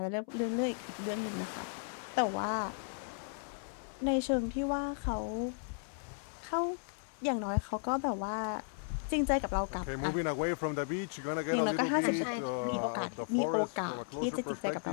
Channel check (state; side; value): silent; right; 54 dB below the other